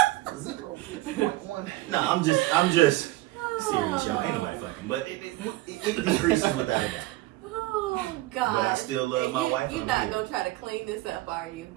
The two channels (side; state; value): left; quieter; 18.3 dB